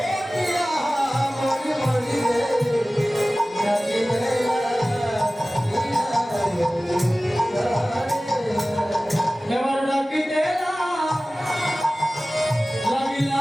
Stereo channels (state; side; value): normal; both; correlation 0.97